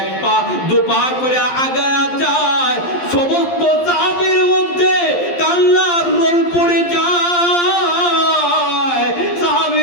পা দু পা করে আগায়া যায়, সমস্ত সাহাবীর মধ্যে কান্নার রোল পড়ে যায়।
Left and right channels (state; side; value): late; right; 11 ms